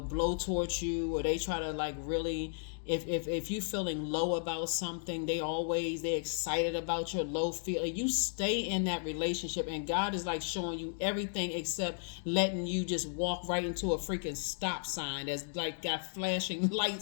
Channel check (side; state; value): right; silent; digital silence